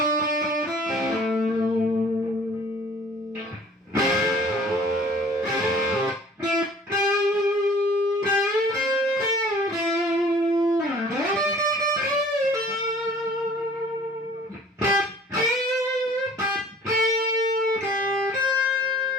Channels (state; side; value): normal; both; correlation 0.50